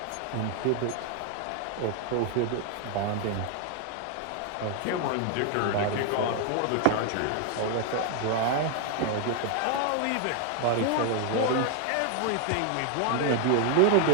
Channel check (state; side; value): different; both; correlation 0.00